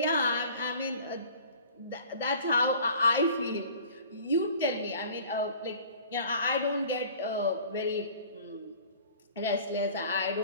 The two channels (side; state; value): both; inverted; correlation -0.46